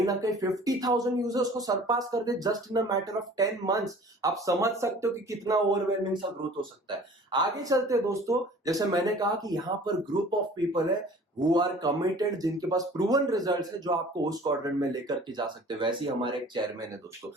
ना कहीं 50,000 यूजर्स को सरपास कर they just in a matter of 10 months. आप समझ सकते हो कि कितना ओवरवेलमिंग सा ग्रोथ हो सकता है। आगे चलते हैं दोस्तों, जैसे मैंने कहा कि यहां पर ग्रुप ऑफ पीपल है हु आर कमिटेड, जिनके पास प्रूवन रिजल्ट्स है जो आपको उस क्वाड्रेंट में लेकर के जा सकते हैं। वैसे ही हमारे एक चेयरमैन है दोस्तों,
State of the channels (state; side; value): normal; both; correlation 0.47